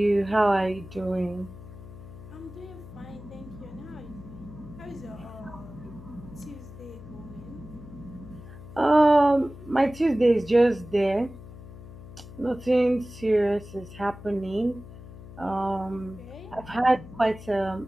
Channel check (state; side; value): noise; left; hum, 15 dB below the sound